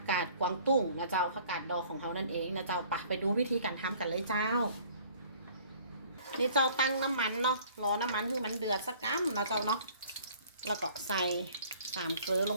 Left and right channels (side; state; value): both; inverted; correlation -0.53